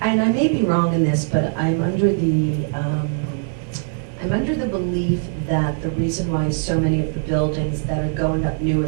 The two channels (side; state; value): left; silent; 65 dB below the other